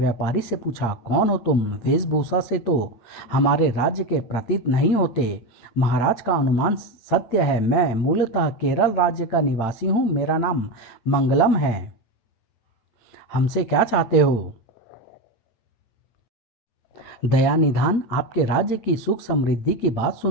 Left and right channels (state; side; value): late; right; 8.9 ms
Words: से पूछा, कौन हो तुम? वेशभूषा से तो हमारे राज्य के प्रतीत नहीं होते। महाराज का अनुमान सत्य है। मैं मूलतः केरल राज्य का निवासी हूँ। मेरा नाम मंगलम है। हमसे क्या चाहते हो? दया निधान, आपके राज्य की सुख समृद्धि की बात